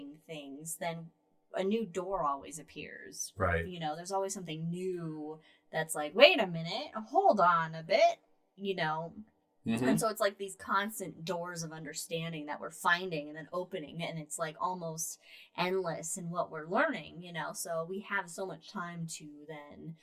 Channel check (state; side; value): identical; both; correlation 1.00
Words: things, then a new door always appears. Right. You know, there's always something new that's like, wait a minute, hold on a bit, you know. Mm-hmm. And so it's like these constant doors of understanding that we're finding and then opening, and it's like almost endless in what we're learning, you know. So we have so much time to then